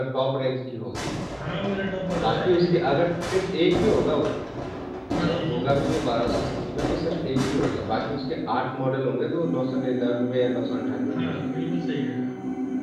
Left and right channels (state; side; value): identical; both; correlation 1.00